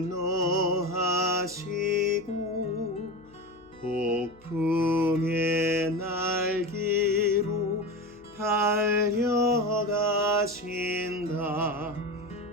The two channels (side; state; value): left; noise; hum, 29 dB below the sound